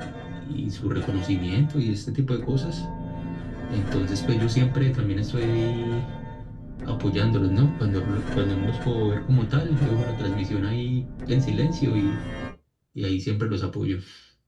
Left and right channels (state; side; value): identical; both; correlation 1.00